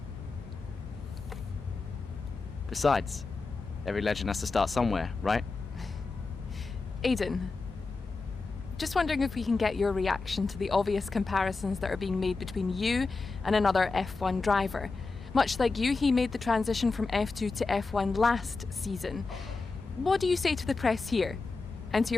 Besides, every legend has to start somewhere, right? Aiden, just wondering if we can get your reaction to the obvious comparisons that are being made between you and another F1 driver. Much like you, he made the transition from F2 to F1 last season. What do you say to the press here, and to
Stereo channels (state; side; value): quieter; right; 4.0 dB